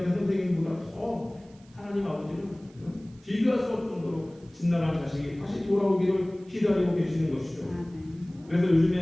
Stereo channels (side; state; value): right; noise; hiss, 30 dB below the sound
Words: 때 선생님보다 더 하나님 아버지는 비교할 수 없을 정도로 집나라 자식이 다시 돌아오기를 기다리고 계시는 것이죠. 그래서